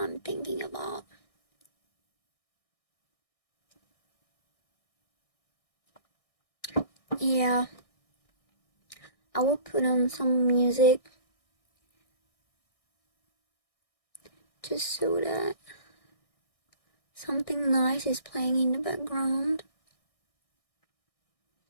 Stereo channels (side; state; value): right; late; 1.6 ms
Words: thinking about. Yeah, I will put on some music just so that something nice is playing in the background.